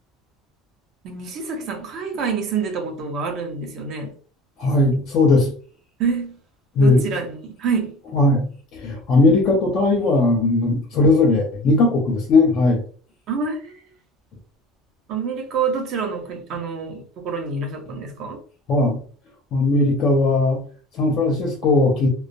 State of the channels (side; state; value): both; normal; correlation 0.42